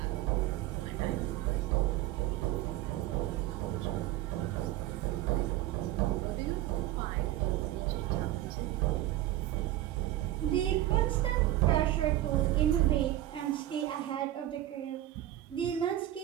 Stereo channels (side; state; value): left; quieter; 14.2 dB